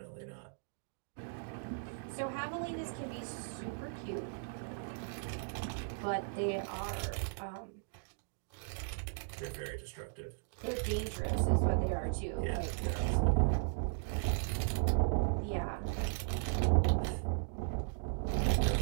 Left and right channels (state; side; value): silent; left; digital silence